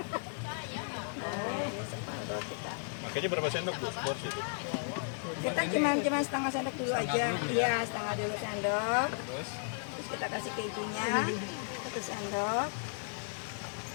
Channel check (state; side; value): silent; right; digital silence